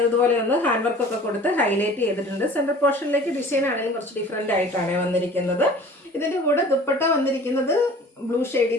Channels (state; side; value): normal; both; correlation 0.45